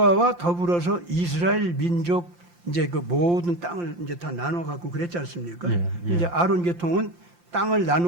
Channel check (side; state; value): left; late; 5.7 ms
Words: 더불어서 이스라엘 민족 이제 그 모든 땅을 이제 다 나눠 갖고 그랬지 않습니까? 예, 예. 이제 아론 계통은 땅을